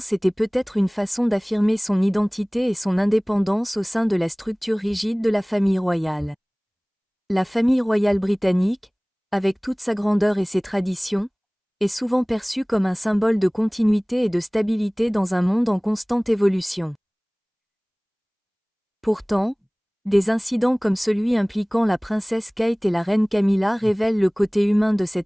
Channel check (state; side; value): identical; both; correlation 1.00